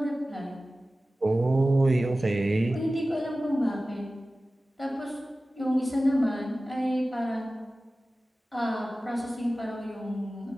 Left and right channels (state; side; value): normal; both; correlation 0.96